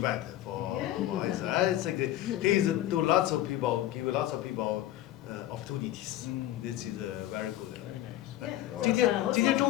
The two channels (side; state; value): right; quieter; 13.9 dB